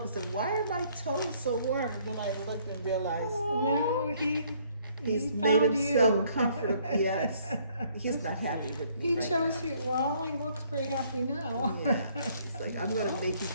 and said, why are my toes so warm? And then I looked and realized No, he's he made found himself you. comfortable. Yes, he's not happy with me. He right chose now. you. Well, he looks pretty happy now. Yeah, it's like I'm gonna make you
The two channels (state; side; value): inverted; both; correlation -0.64